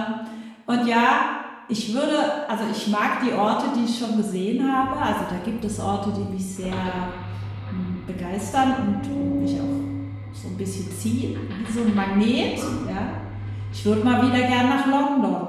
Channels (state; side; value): identical; both; correlation 1.00